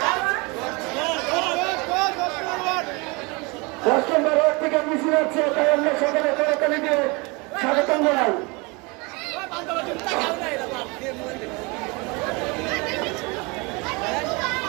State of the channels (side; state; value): left; quieter; 27.8 dB